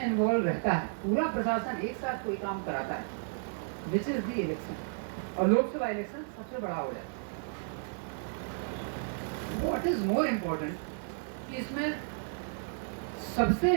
इन्वॉल्व रहता है, पूरा प्रशासन एक साथ कोई काम कराता है, विच इज द इलेक्शन, और लोकसभा इलेक्शन सबसे बड़ा हो जाता है। व्हाट इज मोर इम्पोर्टेंट कि इसमें सबसे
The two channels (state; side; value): silent; left; 56 dB below the other